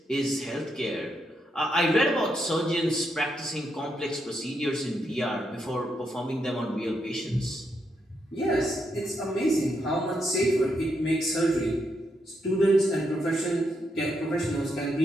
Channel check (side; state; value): both; normal; correlation 0.80